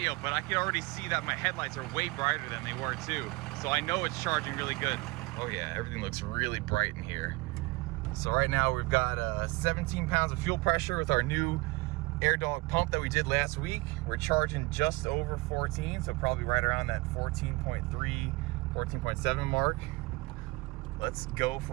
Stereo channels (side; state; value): left; quieter; 23.4 dB